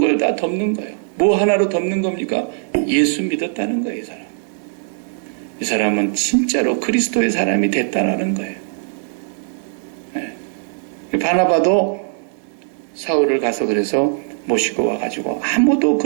다 덮는 거예요. 뭐 하나로 덮는 겁니까? 예수 믿었다는 거예요, 이 사람. 이 사람은 진짜로 그리스도의 사람이 됐다는 거예요. 네. 바나바도 사울을 가서 그래서 모시고 와가지고 아무도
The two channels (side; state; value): left; silent; 66 dB below the other